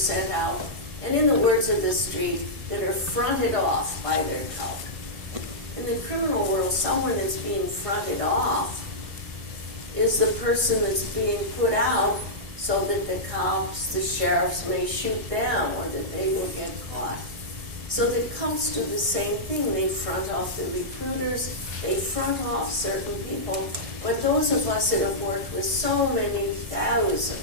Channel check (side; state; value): left; late; 1.6 ms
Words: out, and in the words of the street, that are fronted off by their cult. In the criminal world, someone that's being fronted off is the person that's being put out so that the cops, the sheriffs may shoot them or that they will get caught. So the cults do the same thing. They front off the recruiters, they front off certain people, but those of us that have worked with so many